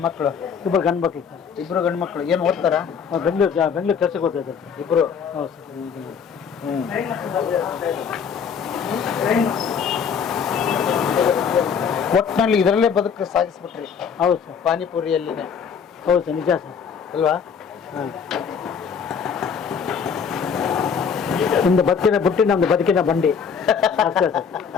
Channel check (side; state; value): right; quieter; 6.7 dB